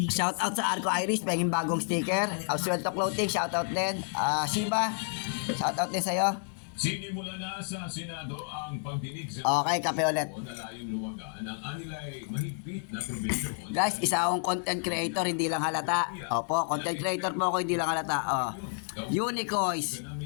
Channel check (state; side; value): silent; right; 58 dB below the other